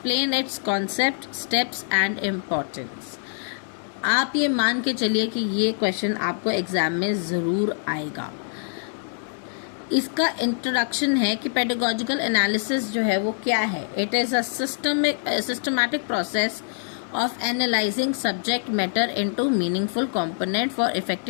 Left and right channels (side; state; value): right; silent; digital silence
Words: it's concept, steps and importance. आप ये मान के चलिए कि ये क्वेश्चन आपको एग्जाम में ज़रूर आएगा। इसका इंट्रोडक्शन है कि पेडागोजिकल एनालिसिस जो है वो क्या है। It is a systematic process of analyzing subject matter into meaningful component for